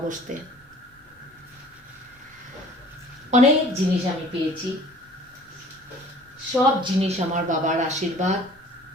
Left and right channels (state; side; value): normal; both; correlation 0.50